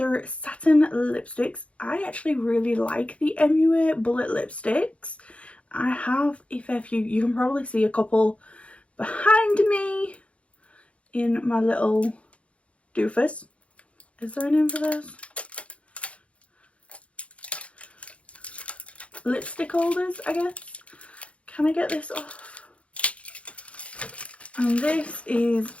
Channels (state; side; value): late; right; 0.062 ms